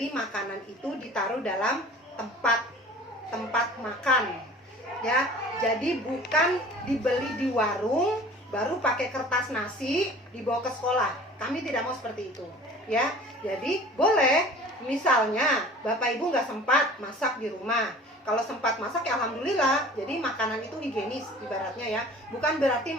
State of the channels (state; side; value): normal; both; correlation 0.45